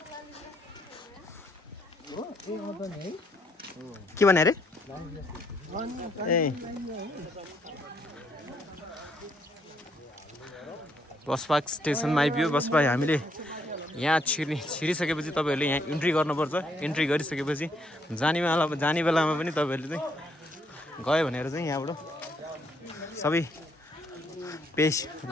के भने अरे ए बसपार्क स्टेसनमा आइपुग्यो बसपा हामीले यहाँ छिरिसकेपछि तपाईँहरूले यहाँ इन्ट्री गर्नुपर्छ इन्ट्री गरिसकेपछि जाने बेलामा पनि तपाईँहरूले चाहिँ गयो भनेर चाहिँ यहाँबाट सबै पेस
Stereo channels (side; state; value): both; normal; correlation 0.71